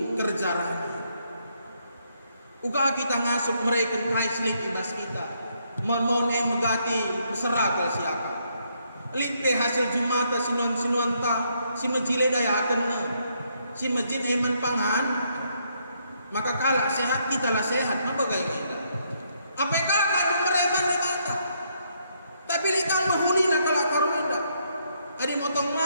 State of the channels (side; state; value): both; inverted; correlation -0.74